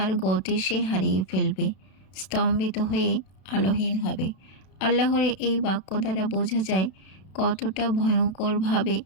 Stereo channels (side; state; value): right; late; 32 ms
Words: গতি সে হারিয়ে ফেলবে, স্তম্ভিত হয়ে আলোহীন হবে। আল্লাহর এই বাক্য দ্বারা বোঝা যায় কতটা ভয়ঙ্করভাবে